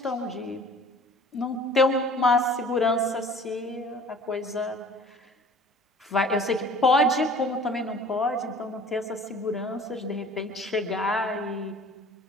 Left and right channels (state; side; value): normal; both; correlation 0.48